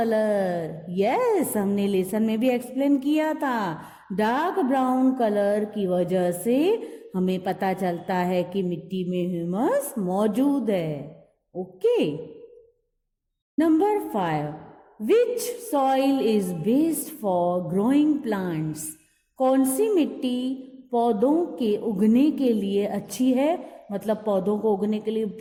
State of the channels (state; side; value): identical; both; correlation 1.00